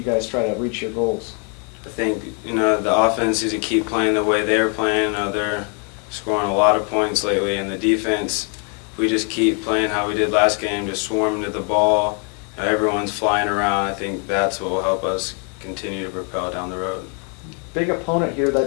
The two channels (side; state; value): right; quieter; 38.5 dB